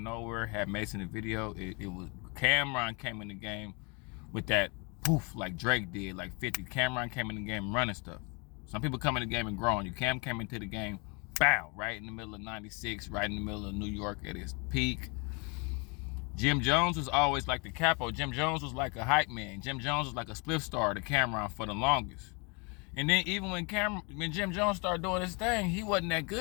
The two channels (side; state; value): right; quieter; 31.6 dB